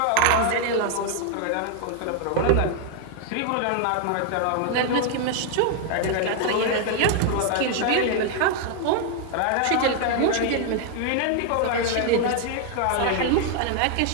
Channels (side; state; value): both; different; correlation 0.00